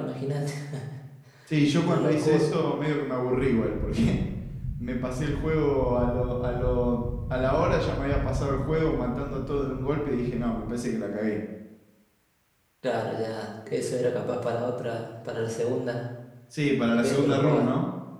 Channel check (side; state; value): both; identical; correlation 1.00